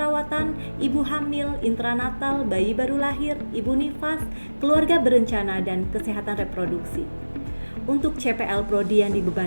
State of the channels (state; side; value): inverted; both; correlation -1.00